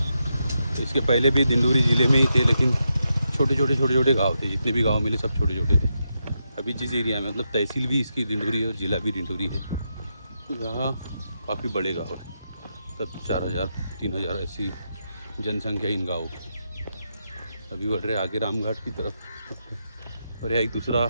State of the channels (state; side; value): inverted; both; correlation -0.85